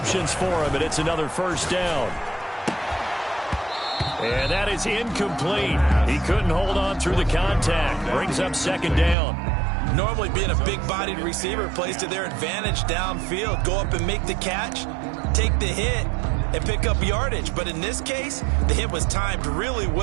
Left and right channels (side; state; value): left; drops out; at 9.2 s